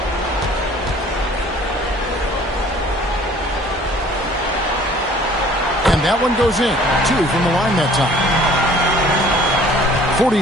And that one goes in. 2 from the line that time.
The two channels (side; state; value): both; normal; correlation 0.53